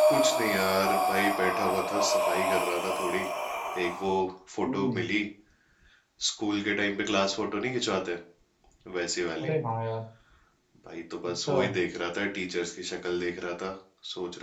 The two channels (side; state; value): both; identical; correlation 1.00